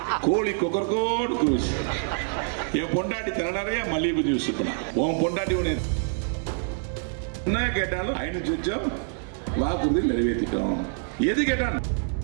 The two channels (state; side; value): silent; left; 61 dB below the other